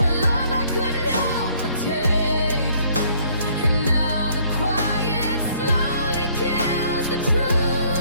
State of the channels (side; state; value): both; inverted; correlation -0.62